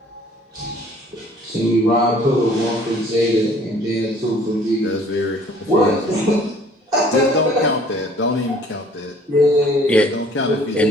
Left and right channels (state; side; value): normal; both; correlation 0.55